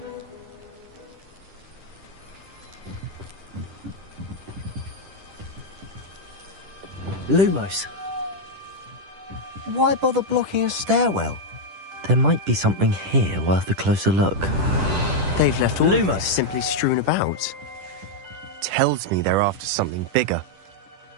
Lumos. Why bother blocking a stairwell? There might be something here worth a closer look. They've left all Lumos simply strewn about. Tells me they're after something bigger.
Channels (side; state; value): left; late; 10 ms